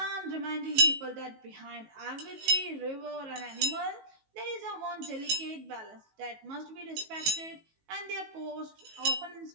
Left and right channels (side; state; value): left; late; 19 ms